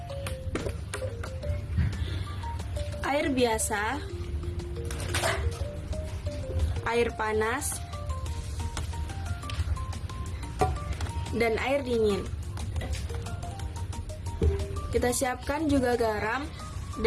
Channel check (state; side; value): identical; both; correlation 1.00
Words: Air biasa, air panas, dan air dingin. Kita siapkan juga garam